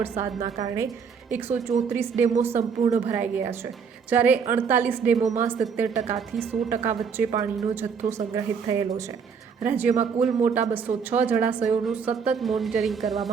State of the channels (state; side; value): quieter; left; 6.2 dB